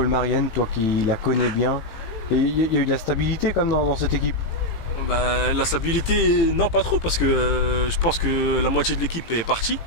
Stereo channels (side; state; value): right; late; 18 ms